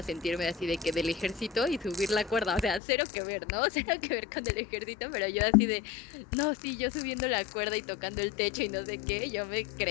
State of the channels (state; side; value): drops out; right; at 2.8 s